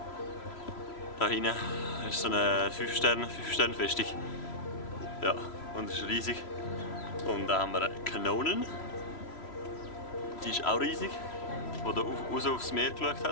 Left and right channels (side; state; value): right; late; 3.0 ms